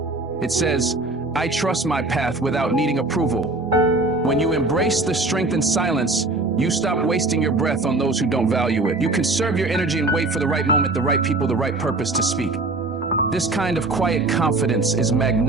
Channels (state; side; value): quieter; left; 3.1 dB